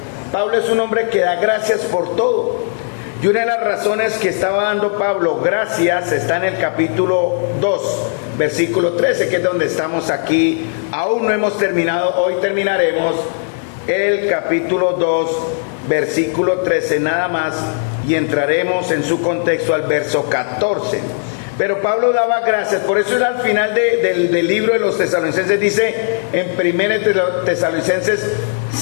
Pablo es un hombre que da gracias por todo. Y una de las razones que estaba dando Pablo gracias está en el capítulo 2, versículo 13, que es donde estamos aquí. Aún no hemos terminado, hoy terminaremos el capítulo 2, versículo 13 nada más, y entraremos en su contexto al verso 14. Pero Pablo daba gracias, por eso al final del libro de los Tesalonicenses dice en 1 Tesalonicenses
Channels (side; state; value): right; silent; digital silence